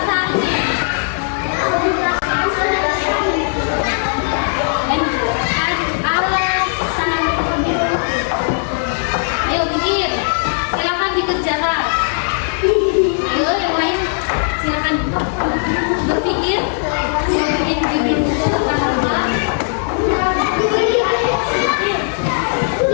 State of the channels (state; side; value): silent; right; digital silence